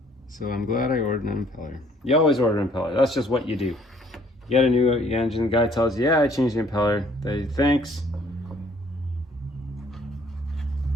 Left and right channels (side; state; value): both; normal; correlation 0.60